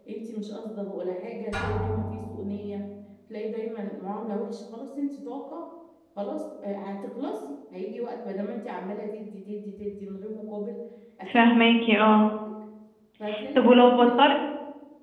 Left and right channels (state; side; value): identical; both; correlation 1.00